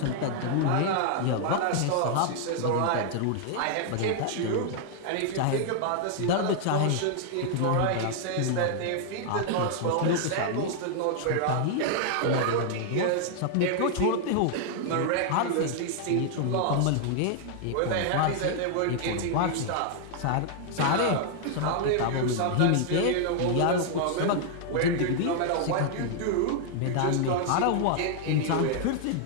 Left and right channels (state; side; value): different; both; correlation 0.00